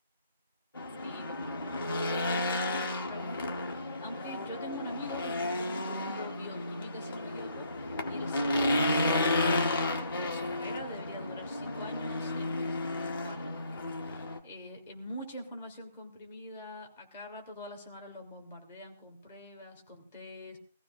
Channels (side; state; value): both; inverted; correlation -0.67